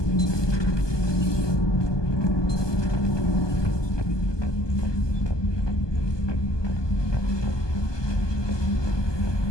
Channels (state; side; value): late; right; 1.2 ms